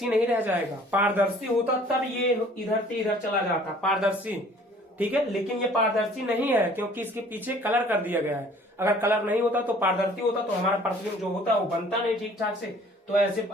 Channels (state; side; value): normal; both; correlation 0.53